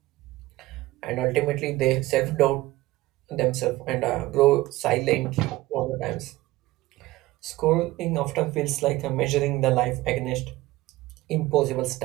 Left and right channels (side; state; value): left; quieter; 18.2 dB